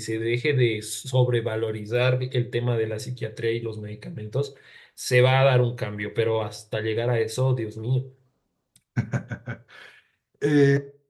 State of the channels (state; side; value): identical; both; correlation 1.00